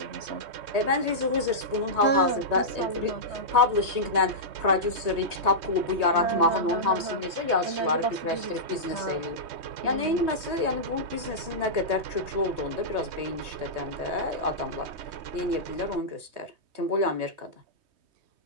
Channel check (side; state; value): left; late; 3.2 ms